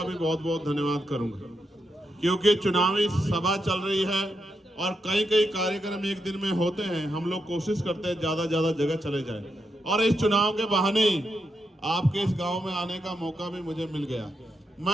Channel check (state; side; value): normal; both; correlation 0.83